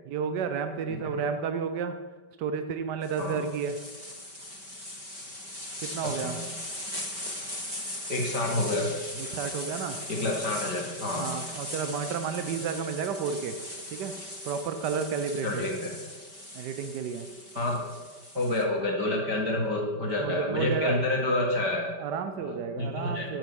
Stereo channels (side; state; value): left; late; 5.1 ms